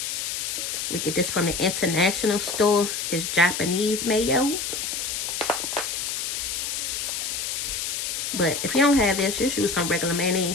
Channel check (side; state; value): left; noise; hiss, 2 dB below the sound